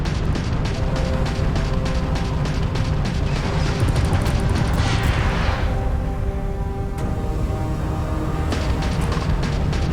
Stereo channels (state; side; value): identical; both; correlation 1.00